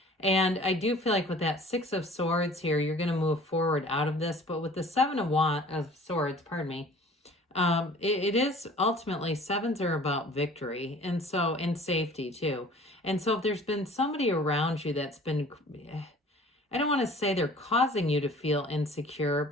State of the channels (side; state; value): both; normal; correlation 0.48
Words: And I do feel like with that Six of Swords here, you're going to move forward out of this. But with the Seven of Swords, pardon me, it is ultimately, sevens are about victory, and so, and safety too. And so if there's been somebody around you that's been, I don't want to say they're causing you to feel insecure,